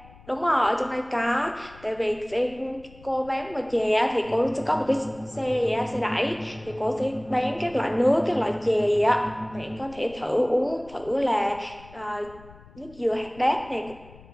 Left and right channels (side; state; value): left; noise; rumble, 22 dB below the sound